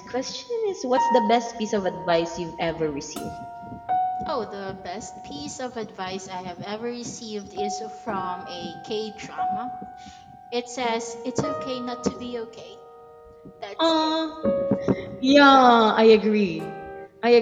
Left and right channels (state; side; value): identical; both; correlation 1.00